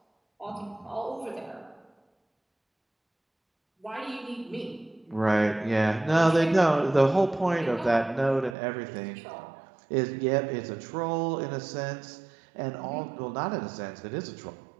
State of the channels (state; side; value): drops out; left; at 8.6 s